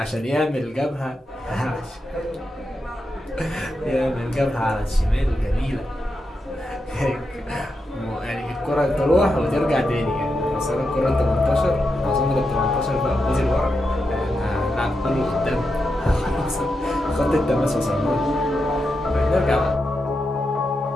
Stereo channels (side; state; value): both; normal; correlation 0.86